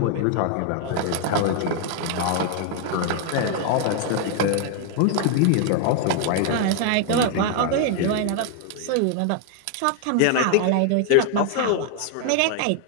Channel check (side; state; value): both; different; correlation 0.00